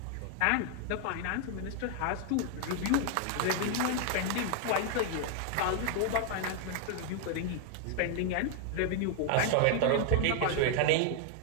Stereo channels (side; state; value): both; different; correlation 0.00